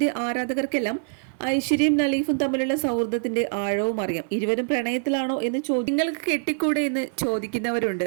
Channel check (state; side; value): silent; left; 61 dB below the other